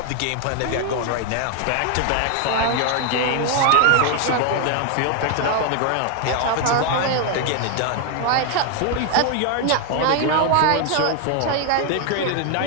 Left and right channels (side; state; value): both; different; correlation 0.00